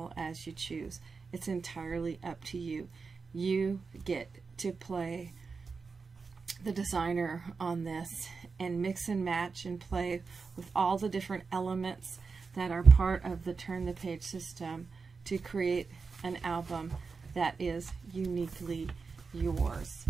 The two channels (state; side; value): quieter; left; 4.8 dB